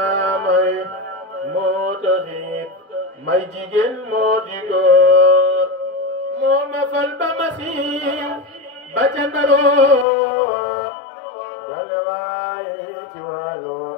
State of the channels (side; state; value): right; drops out; at 10.1 s